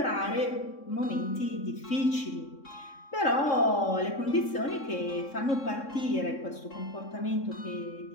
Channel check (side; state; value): right; late; 3.6 ms